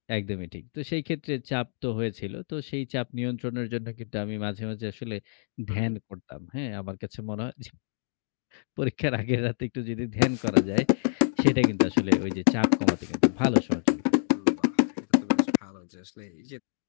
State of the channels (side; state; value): right; silent; digital silence